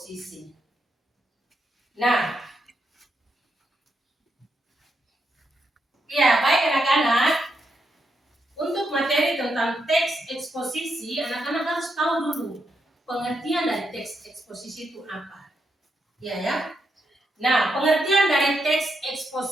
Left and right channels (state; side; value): normal; both; correlation 0.82